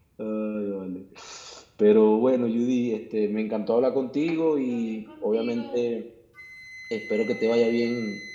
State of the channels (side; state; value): both; identical; correlation 1.00